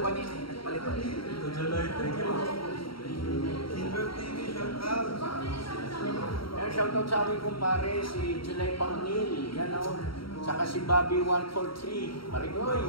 pa-shoutout sa amin kumpare, si July Parnil, yan o. Saka si Bobby 143,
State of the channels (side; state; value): right; late; 0.74 ms